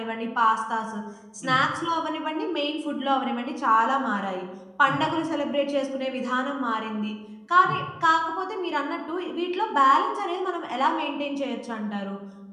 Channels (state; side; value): identical; both; correlation 1.00